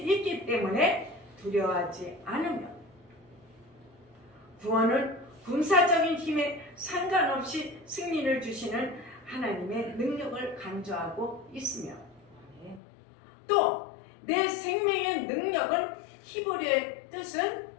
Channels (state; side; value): drops out; right; at 12.8 s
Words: 때문에 두려워하지 않으며, 구원은 군사적인 힘에 상관없이 승리를 주시는 하나님의 능력을 강조하고 있으며, 또 내 생명의 능력은 히브리어의 뜻은